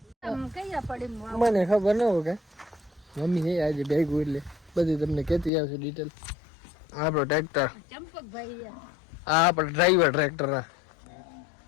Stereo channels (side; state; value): right; drops out; at 5.5 s